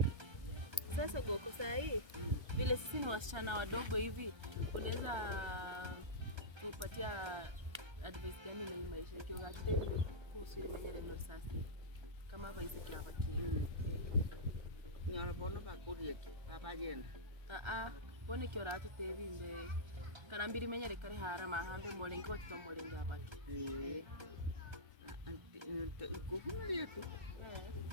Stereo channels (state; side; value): late; left; 1.3 ms